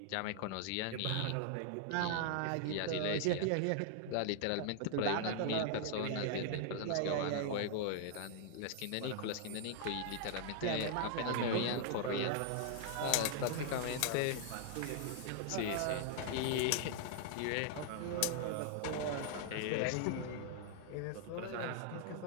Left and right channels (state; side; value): different; both; correlation -0.01